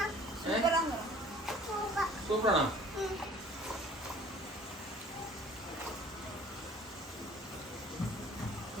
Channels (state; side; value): normal; both; correlation 0.51